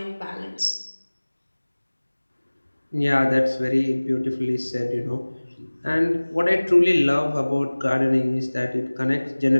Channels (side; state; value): both; inverted; correlation -1.00